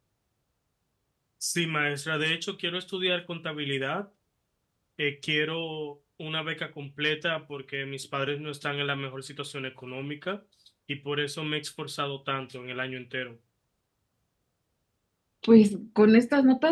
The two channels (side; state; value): both; identical; correlation 1.00